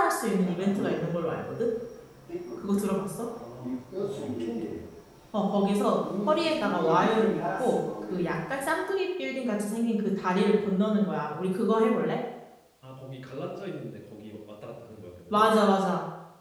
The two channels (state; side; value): identical; both; correlation 1.00